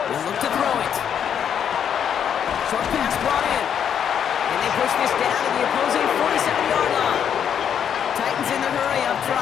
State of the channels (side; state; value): right; quieter; 8.5 dB